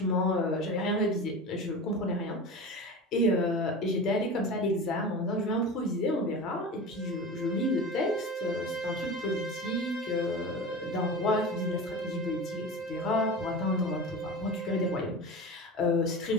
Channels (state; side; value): normal; both; correlation 0.30